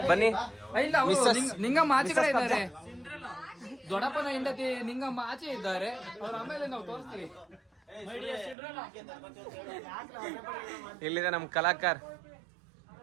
ಬನ್ನಿ. ಇಲ್ಲ, ನಿಂಗಮ್ಮ ಆಚೆ ಕಡೆ ಇದ್ದಾರೆ. ದೊಡ್ಡಪ್ಪನ ಹೆಂಡತಿ ನಿಂಗಮ್ಮ ಆಚೆ ಇದ್ದಾರೆ. ಅವ್ರ ಆಮೇಲೆ ನಾವು ತೋರಿಸ್ತೀವಿ. ಇಲ್ಲಿದೆ ನಮ್ಮ ಕಲಾಕಾರ.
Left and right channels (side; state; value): left; drops out; at 8.6 s